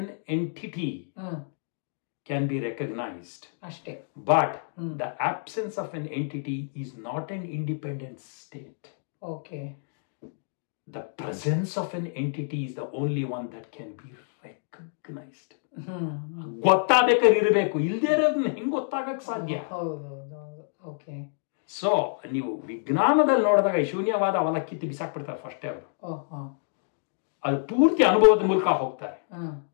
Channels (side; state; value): right; silent; digital silence